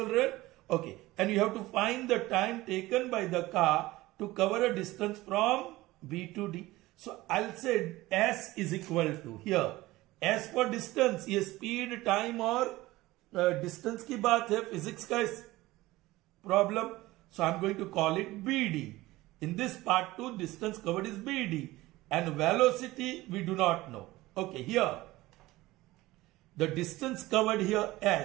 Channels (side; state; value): left; quieter; 18.6 dB